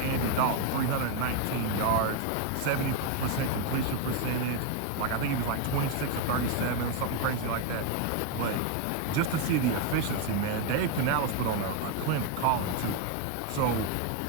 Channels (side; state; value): both; different; correlation 0.01